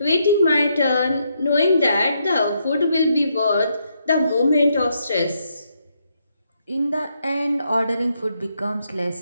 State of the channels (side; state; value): both; inverted; correlation -0.77